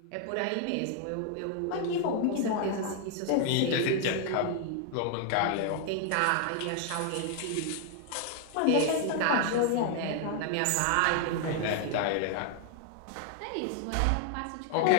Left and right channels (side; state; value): both; different; correlation 0.00